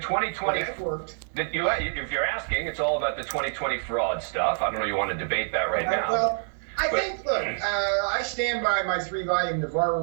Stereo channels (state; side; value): silent; left; 60 dB below the other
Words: worked. If you're asking, it's all about the 2020 fraud stuff. I don't know. You want to debate that right now? Well, I think. Look, I stand by my 3-volume